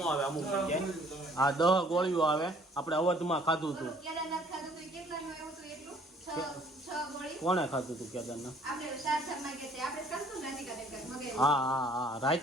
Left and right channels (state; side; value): normal; both; correlation 0.58